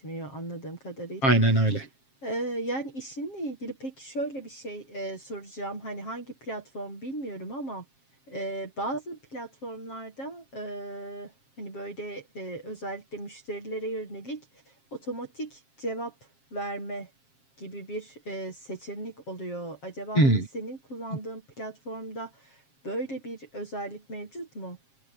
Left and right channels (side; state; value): right; late; 7.4 ms